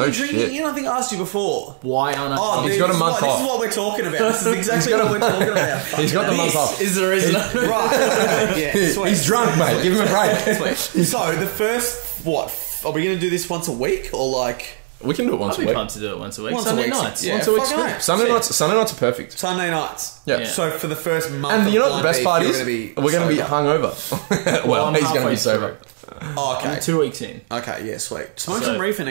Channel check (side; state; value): left; silent; digital silence